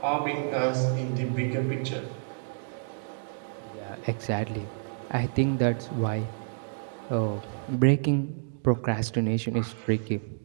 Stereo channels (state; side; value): silent; left; digital silence